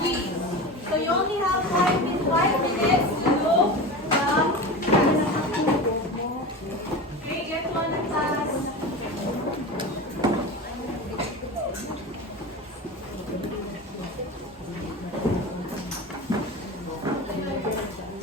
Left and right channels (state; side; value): normal; both; correlation 0.28